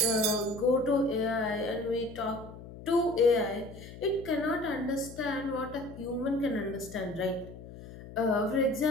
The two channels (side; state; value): left; noise; hum, 15 dB below the sound